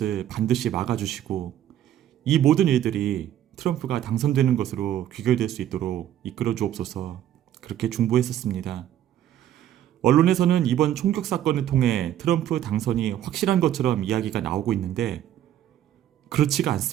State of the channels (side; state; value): left; quieter; 11.6 dB